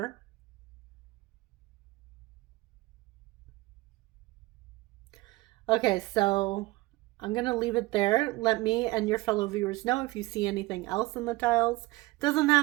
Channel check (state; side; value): quieter; left; 20.6 dB